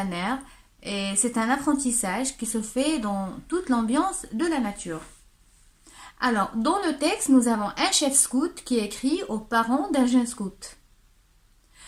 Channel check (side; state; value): both; identical; correlation 1.00